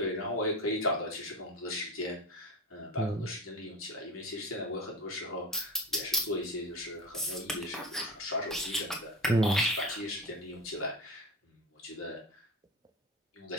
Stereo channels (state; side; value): normal; both; correlation 0.27